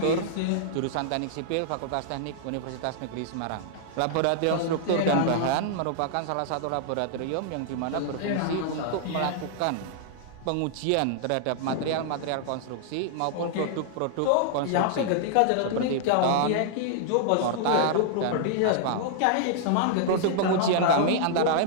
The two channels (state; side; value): different; both; correlation -0.01